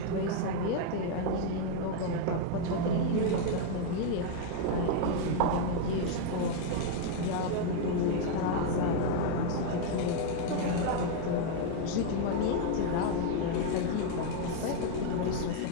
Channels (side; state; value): both; different; correlation 0.00